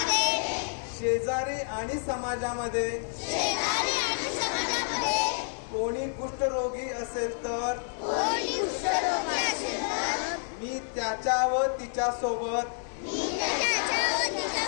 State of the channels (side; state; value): right; silent; digital silence